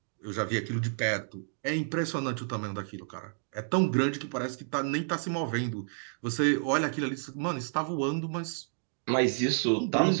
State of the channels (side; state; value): left; silent; digital silence